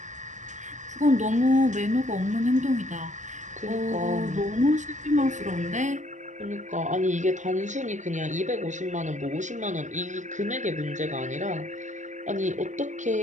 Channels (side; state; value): left; late; 0.35 ms